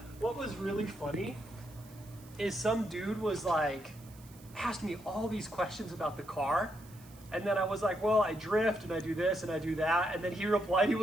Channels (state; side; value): noise; right; hiss, 23 dB below the sound